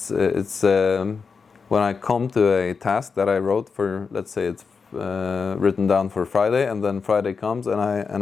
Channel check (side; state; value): right; quieter; 5.3 dB